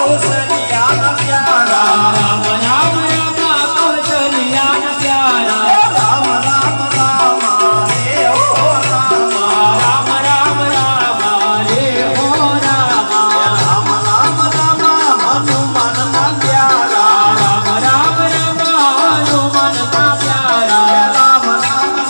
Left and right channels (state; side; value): inverted; both; correlation -1.00